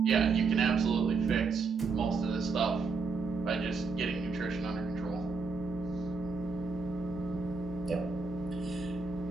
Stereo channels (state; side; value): quieter; left; 4.5 dB